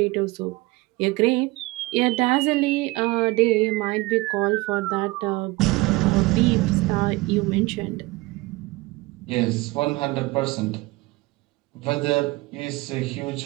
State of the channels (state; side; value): quieter; left; 22.1 dB